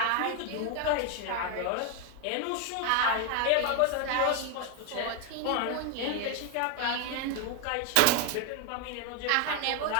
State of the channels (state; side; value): different; both; correlation 0.01